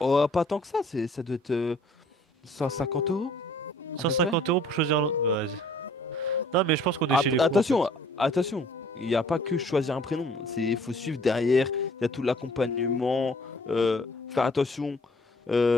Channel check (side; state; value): both; normal; correlation 0.56